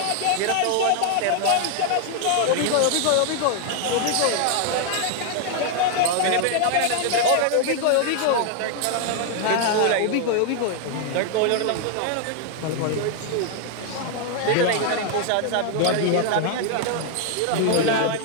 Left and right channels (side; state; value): both; different; correlation 0.00